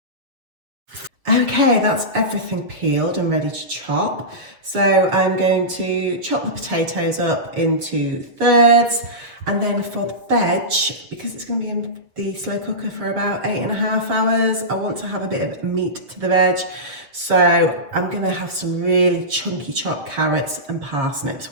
Okay, that's everything peeled and ready to chop. So I'm going to chop the potatoes up into thirds, and then for the veg, because it's going to be in the slow cooker for about 8.5 hours, I want to have a bit of meat to the veg. So I'm going to have some really chunky chopped carrots and parsnips.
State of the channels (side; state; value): left; late; 7.4 ms